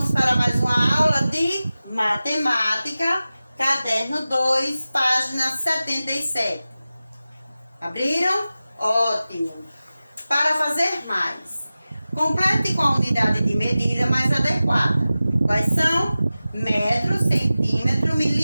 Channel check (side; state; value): both; inverted; correlation -0.95